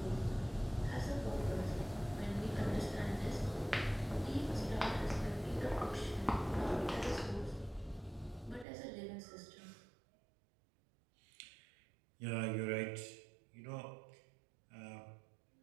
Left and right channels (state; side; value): drops out; left; at 8.7 s